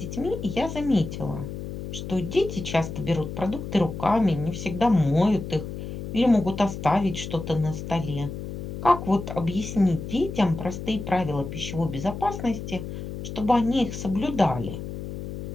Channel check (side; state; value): left; noise; hum, 7 dB below the sound